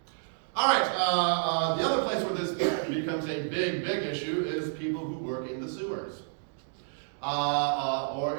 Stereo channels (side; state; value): left; silent; digital silence